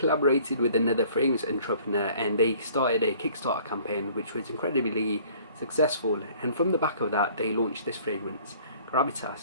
with another fragrance entrepreneur and they started a Kickstarter campaign which was incredibly successful, and from the back of that they launched this fragrance,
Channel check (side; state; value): both; inverted; correlation -0.54